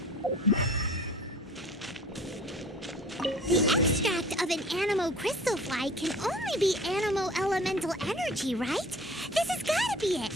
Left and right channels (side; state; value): both; normal; correlation 0.46